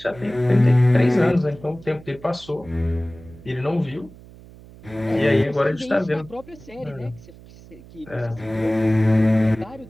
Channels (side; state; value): right; noise; hum, 20 dB below the sound